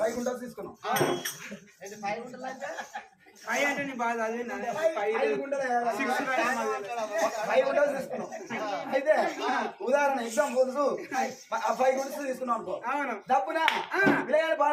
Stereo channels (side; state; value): both; identical; correlation 1.00